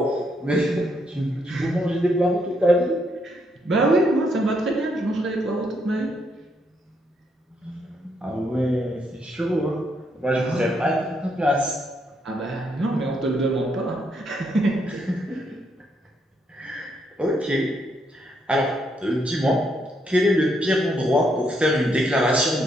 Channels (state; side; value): normal; both; correlation 0.75